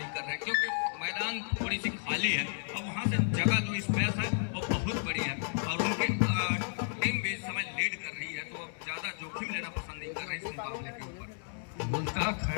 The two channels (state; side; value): silent; right; digital silence